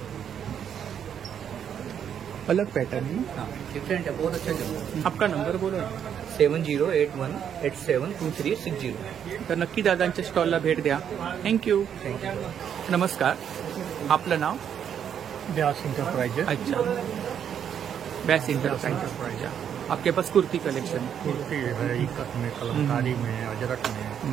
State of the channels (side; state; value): left; quieter; 8.6 dB